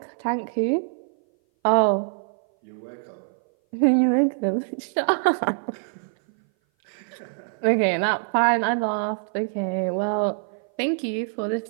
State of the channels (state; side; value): silent; left; 58 dB below the other